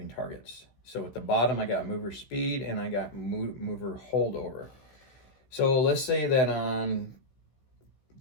targets. So at the bottom, I got mover speed and I got mover holdover. So let's say that on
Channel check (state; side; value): late; right; 16 ms